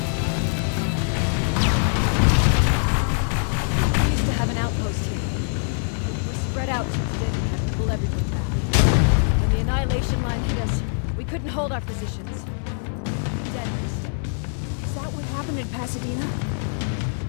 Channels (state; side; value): silent; right; 63 dB below the other